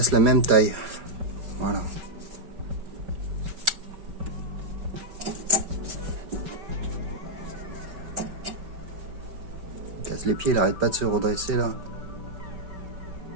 la même taille. Voilà. Il casse les pieds, il n'arrête pas de se redresser là.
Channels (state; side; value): late; left; 5.2 ms